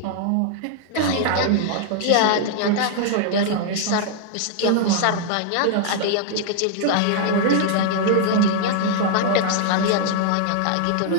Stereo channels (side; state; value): both; different; correlation 0.00